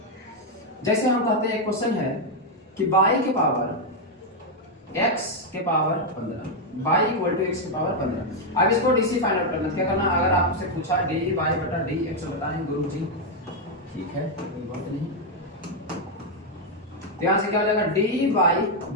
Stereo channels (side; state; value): both; normal; correlation 0.01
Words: जैसे हम कहते हैं एक क्वेश्चन है कि y के पावर x के power 15, y equal to x के पावर 15। अब इसको डीसी फाइंड आउट करना, क्या करना, अगर आपसे पूछा dy बटा dx बताएं गुरु जी, ठीक है कोई बात नहीं। तो यहां से क्या हो जाएगा, dy